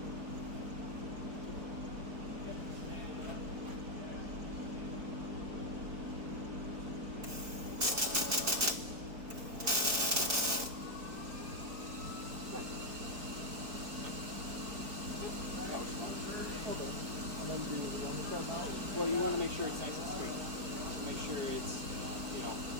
Okay. And then do the undercut now? Well, you want to make sure it's nice and straight. So make sure it's, you know,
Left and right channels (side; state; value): left; late; 4.5 ms